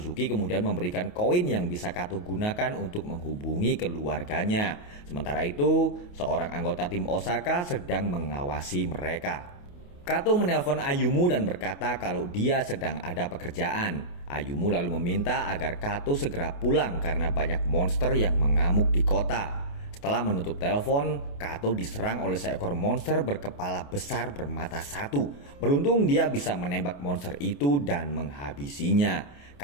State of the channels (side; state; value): right; late; 28 ms